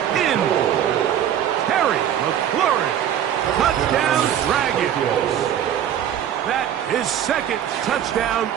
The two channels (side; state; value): left; quieter; 10.0 dB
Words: in. Terry McLaurin. Touchdown Dragons. That is second touchdown